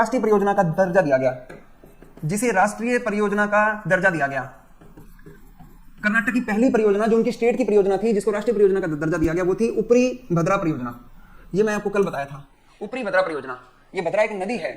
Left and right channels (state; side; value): identical; both; correlation 1.00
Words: परियोजना का दर्जा दिया गया, जिसे राष्ट्रीय परियोजना का दर्जा दिया गया, कर्नाटक की पहली परियोजना जो उनकी स्टेट की परियोजना थी जिसको राष्ट्रीय परियोजना का दर्जा दिया गया, वो थी ऊपरी भद्रा परियोजना। ये मैं आपको कल बताया था, ऊपरी भद्रा परियोजना। ये भद्रा एक नदी है